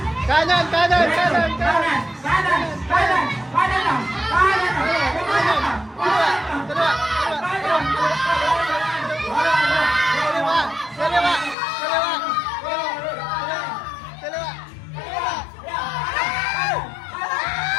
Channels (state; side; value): drops out; right; at 11.6 s